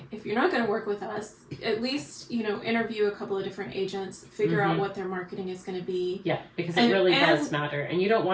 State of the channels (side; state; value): both; identical; correlation 1.00